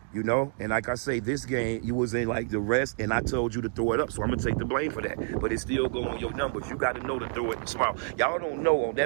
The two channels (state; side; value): silent; left; 59 dB below the other